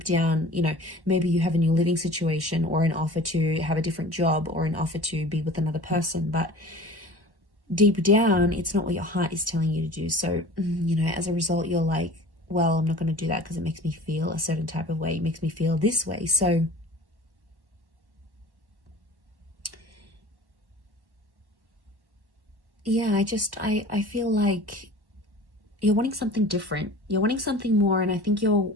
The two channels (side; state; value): left; late; 1.1 ms